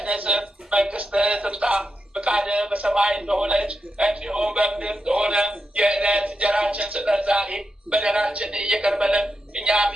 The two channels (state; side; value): normal; both; correlation 0.86